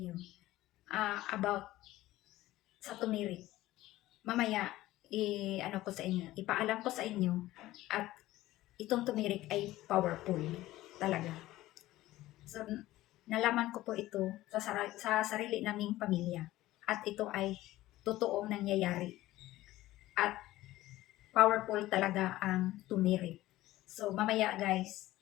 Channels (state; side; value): quieter; right; 16.3 dB